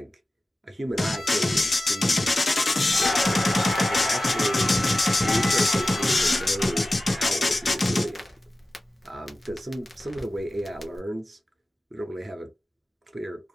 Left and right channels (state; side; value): normal; both; correlation 0.95